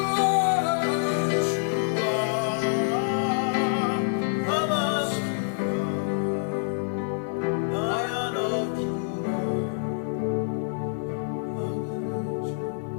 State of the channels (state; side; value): silent; right; 60 dB below the other